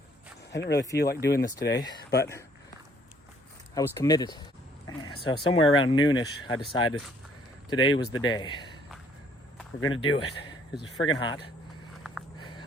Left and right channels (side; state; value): both; normal; correlation 0.63